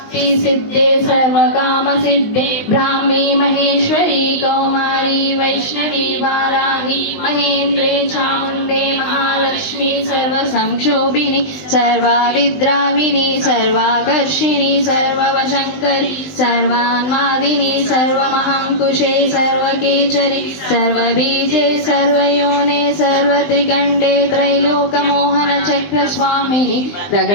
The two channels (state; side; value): late; right; 19 ms